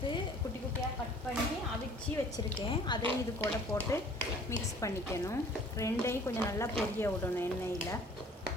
குட்டி குட்டியாக கட் பண்ணி அவிச்சு வச்சுருக்கேன். அதையும் இது கூட போட்டு மிக்ஸ் பண்ணிக்கணும். ரெண்டையும் கொஞ்சம் நல்லா பொரிய விடணும் எண்ணெயில்.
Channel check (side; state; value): both; normal; correlation 0.52